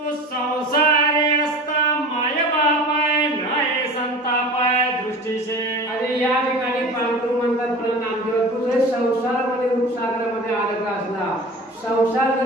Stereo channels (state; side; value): normal; both; correlation 0.37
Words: संसारी असता माय बाप आहे, नाही संताप आहे दृष्टीशे. आणि या ठिकाणी पांडुरंग म्हणतात मला नामदेव, तू जरी संसारामध्ये रूपसागरामध्ये अडकला असला, संसार